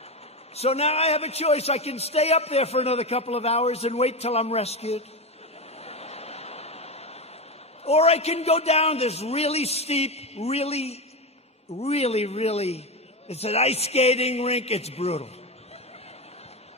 So now I have a choice. I can stay up there for another couple of hours and wait till I'm rescued. Or I can go down this really steep, really, it's an ice skating rink. It's brutal.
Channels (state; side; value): normal; both; correlation 0.16